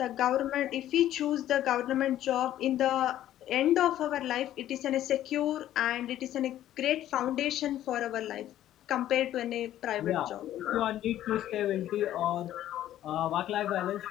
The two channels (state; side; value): quieter; right; 12.6 dB